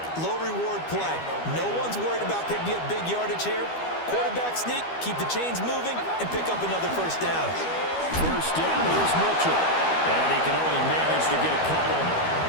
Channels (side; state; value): right; late; 12 ms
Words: low-reward play. No one's worried about picking up big yardage here. Quarterback sneak, keep the chains moving, and pick up another first down. First down, here's Mitchell. And he can only manage to get a couple.